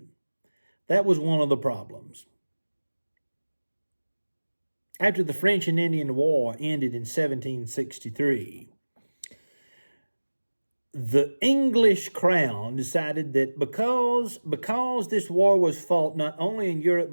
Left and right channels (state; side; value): inverted; both; correlation -1.00